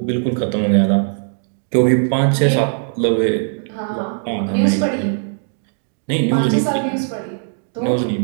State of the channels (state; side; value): silent; left; digital silence